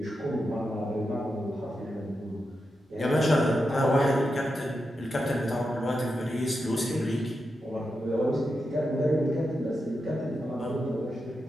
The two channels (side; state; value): both; normal; correlation 0.88